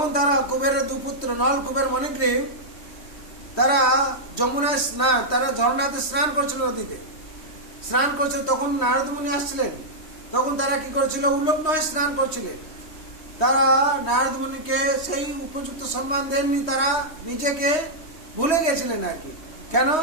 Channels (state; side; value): late; right; 3.1 ms